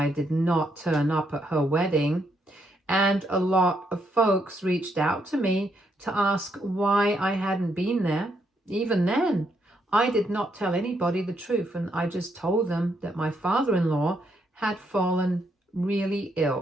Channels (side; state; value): both; normal; correlation 0.76